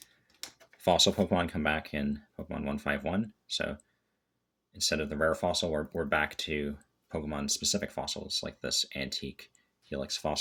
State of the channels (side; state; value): both; identical; correlation 1.00